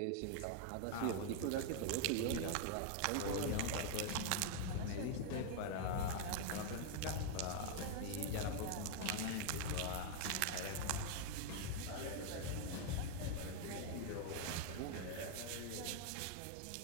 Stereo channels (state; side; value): different; both; correlation 0.00